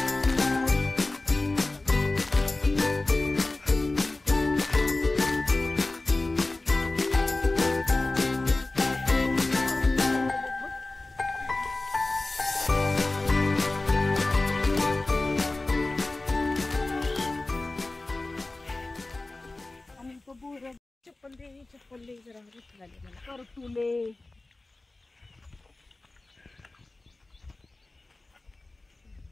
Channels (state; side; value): quieter; right; 3.0 dB